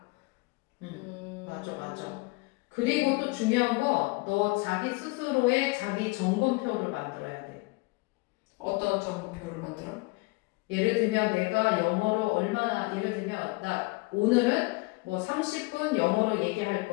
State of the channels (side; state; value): right; quieter; 25.0 dB